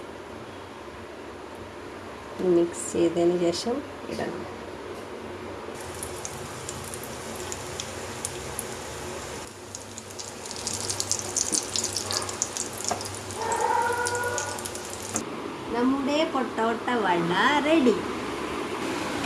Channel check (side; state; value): both; identical; correlation 1.00